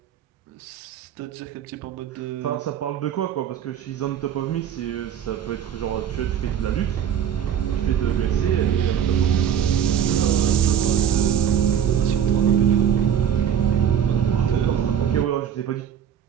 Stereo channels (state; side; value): quieter; left; 9.0 dB